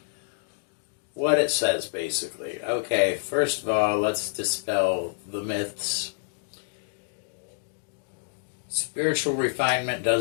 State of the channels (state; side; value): silent; right; digital silence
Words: what it says basically. Okay, first of all, let's dispel the myths. Spiritual refinement